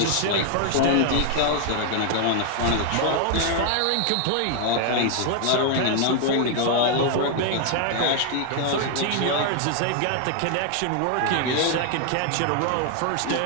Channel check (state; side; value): different; both; correlation 0.00